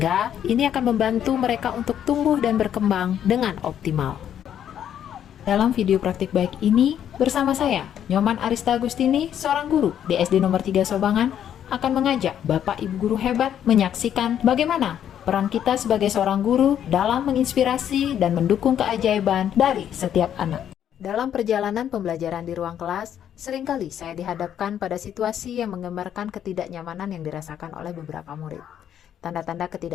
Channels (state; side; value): quieter; right; 9.8 dB